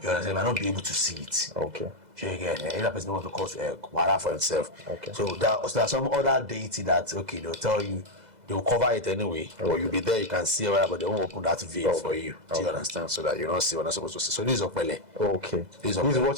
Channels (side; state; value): left; late; 2.0 ms